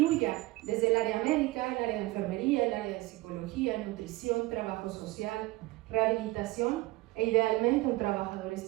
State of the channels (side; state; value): left; quieter; 19.9 dB